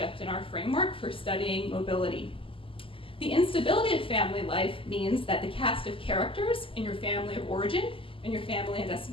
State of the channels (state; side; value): late; right; 0.26 ms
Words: in our framework for studying mobility. The instability of family life means that the cast of characters in your family of origin and your family and